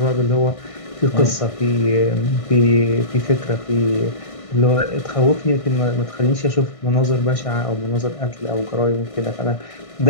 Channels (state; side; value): late; right; 1.6 ms